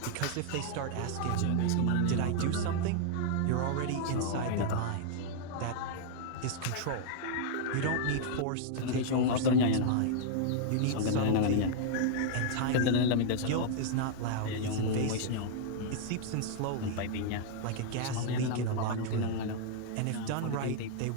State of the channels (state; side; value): different; both; correlation -0.01